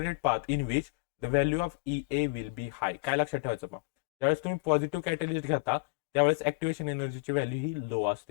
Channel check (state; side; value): quieter; right; 27.4 dB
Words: path in which the value of EA will be high. काय लक्षात ठेवायचं पहा, ज्यावेळेस तुम्ही पॉझिटिव्ह कॅटलिस्ट घेता त्यावेळेस ऍक्टिव्हेशन एनर्जीची व्हॅल्यू ही लो